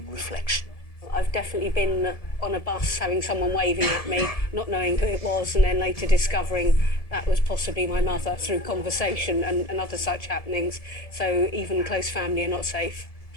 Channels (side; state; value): right; late; 1.7 ms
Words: reflection. I've definitely been on a bus having someone waving at me, not knowing who it was, and then later discovering that was possibly my mother through conversation and other such happenings. So even close family are not safe.